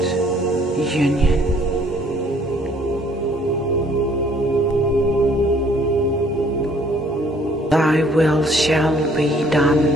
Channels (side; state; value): both; normal; correlation 0.60